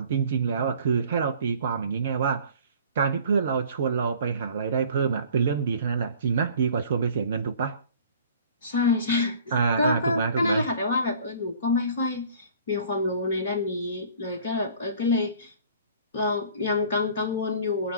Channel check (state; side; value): inverted; both; correlation -0.50